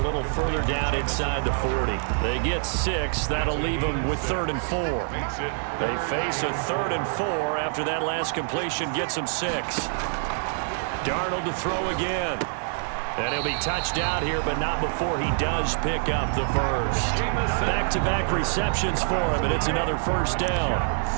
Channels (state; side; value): silent; left; digital silence